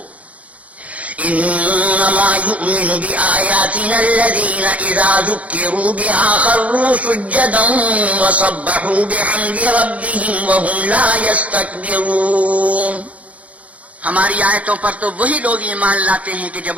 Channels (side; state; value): left; late; 0.067 ms